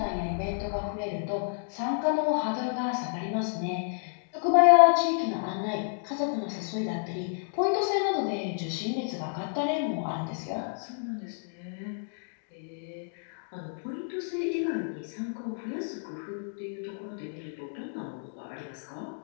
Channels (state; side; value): silent; right; digital silence